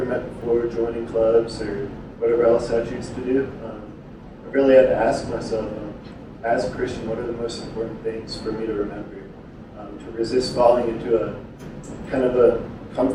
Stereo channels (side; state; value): both; identical; correlation 1.00